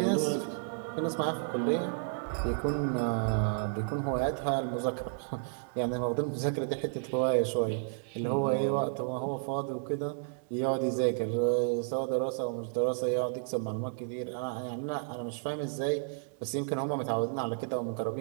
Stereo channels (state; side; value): silent; left; 56 dB below the other